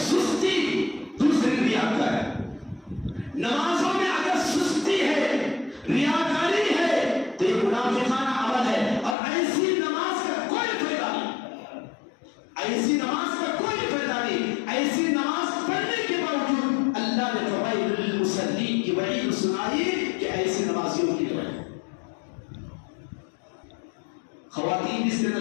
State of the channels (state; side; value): drops out; right; at 9.2 s